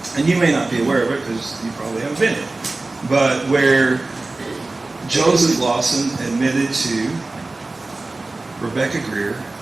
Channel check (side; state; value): left; quieter; 3.2 dB